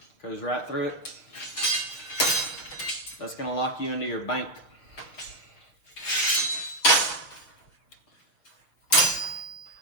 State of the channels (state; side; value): late; right; 6.6 ms